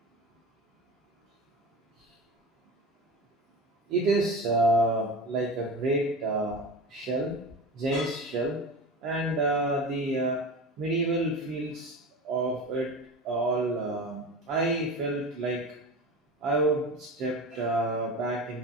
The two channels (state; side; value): normal; both; correlation 0.29